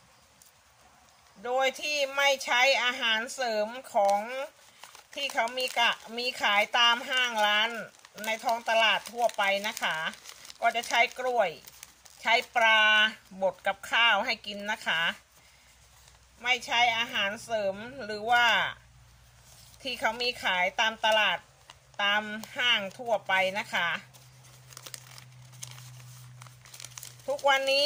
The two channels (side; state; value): both; identical; correlation 1.00